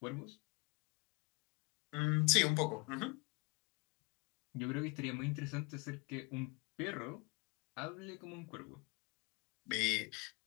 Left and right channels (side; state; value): right; quieter; 28.6 dB